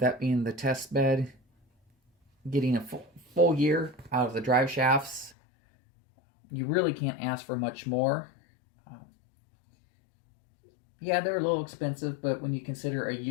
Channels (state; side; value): drops out; right; at 5.4 s